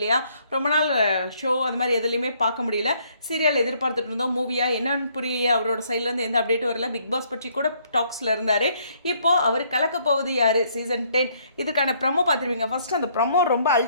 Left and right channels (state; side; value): inverted; both; correlation -0.67